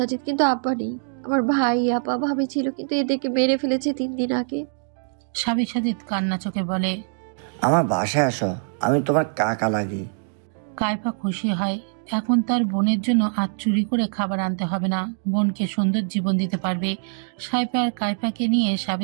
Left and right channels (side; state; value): left; silent; digital silence